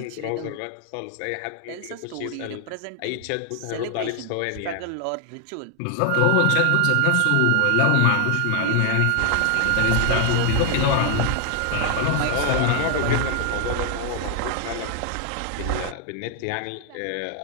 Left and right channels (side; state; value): both; different; correlation 0.00